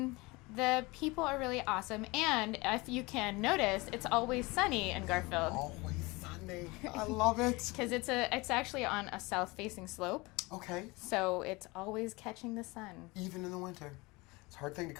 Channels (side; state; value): right; quieter; 24.1 dB